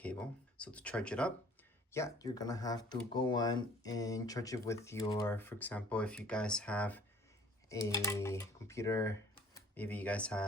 So to charge it up, yeah, you're gonna have to go on and charge it with your, for example, if you guys have a computer, maybe you guys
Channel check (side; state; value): both; normal; correlation 0.53